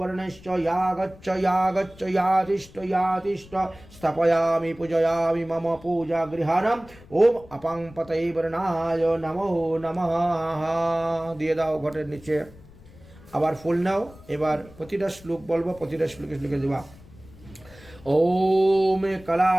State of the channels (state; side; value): noise; left; rumble, 22 dB below the sound